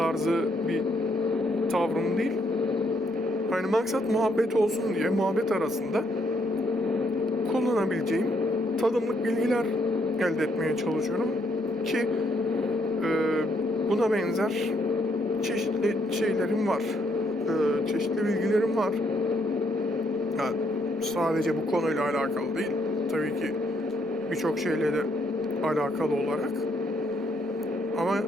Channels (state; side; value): normal; both; correlation 0.73